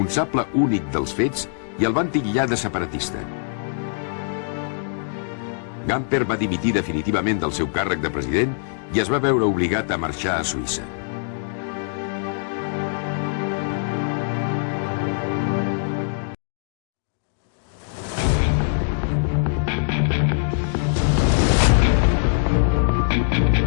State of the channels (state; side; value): silent; right; digital silence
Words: únic dels fets i el van titllar de separatista. Gamper va dimitir definitivament del seu càrrec de president i es va veure obligat a marxar a Suïssa.